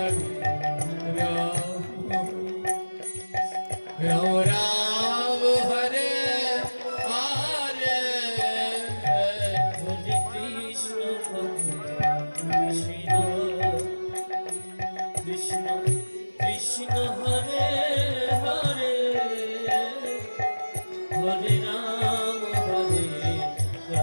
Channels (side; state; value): both; inverted; correlation -1.00